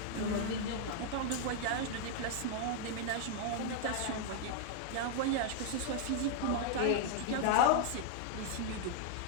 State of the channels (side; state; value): both; different; correlation -0.01